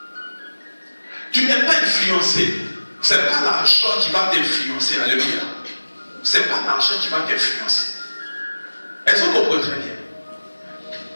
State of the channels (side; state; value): both; inverted; correlation -1.00